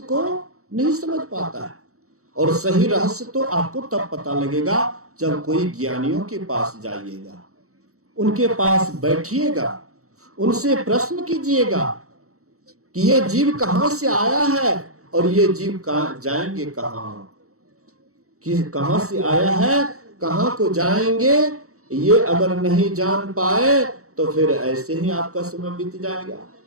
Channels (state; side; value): late; left; 0.65 ms